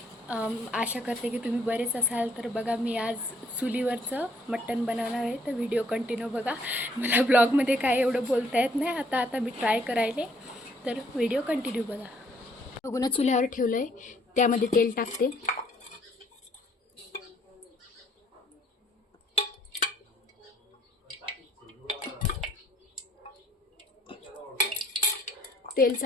आशा करते की तुम्ही बरेच असाल. तर बघा, मी आज चुलीवरचं मटण बनवणार आहे. तर व्हिडिओ कंटिन्यू बघा. मला ब्लॉगमध्ये काय एवढं बोलता येत नाही. आता मी ट्राय करायले, तर व्हिडिओ कंटिन्यू बघा. बघून चुल्यावर ठेवलं आहे, त्यामध्ये तेल टाकते. तेल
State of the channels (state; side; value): normal; both; correlation 0.65